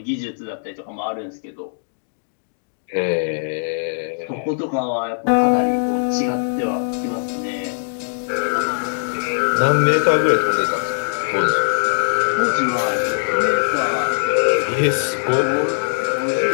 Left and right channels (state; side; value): silent; right; digital silence